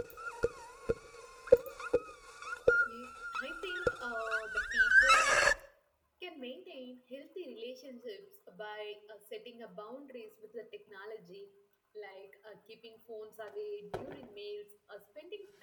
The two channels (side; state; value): both; identical; correlation 1.00